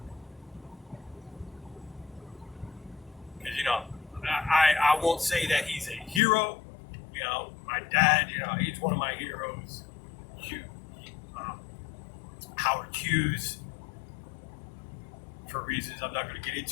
Because, I won't say that he's a hero. My dad, he's one of my heroes. Howard Hughes, for reasons I'm not going to get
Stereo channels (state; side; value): drops out; right; at 6.2 s